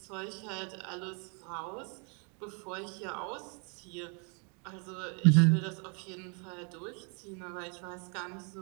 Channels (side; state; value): left; quieter; 37.4 dB